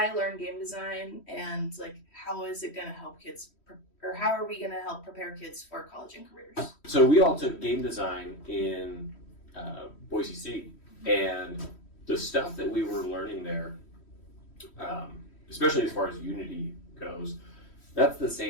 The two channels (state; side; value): late; right; 3.1 ms